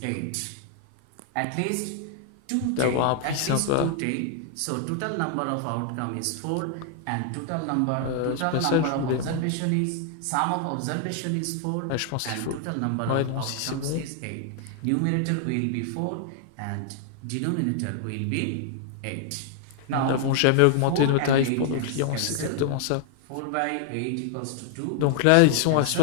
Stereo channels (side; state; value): both; different; correlation 0.00